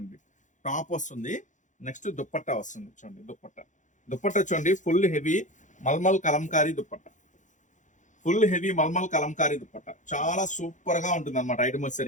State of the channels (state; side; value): late; right; 0.36 ms